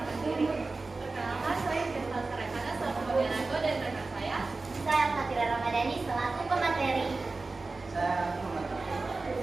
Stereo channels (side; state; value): left; quieter; 3.6 dB